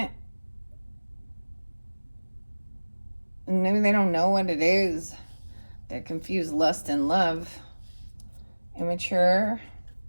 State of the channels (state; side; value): inverted; both; correlation -1.00